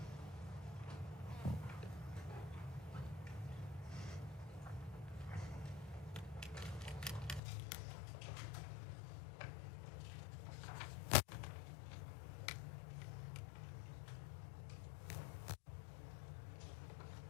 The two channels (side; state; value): right; drops out; at 7.4 s